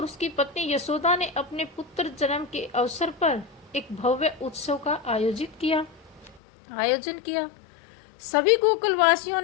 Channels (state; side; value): drops out; right; at 6.4 s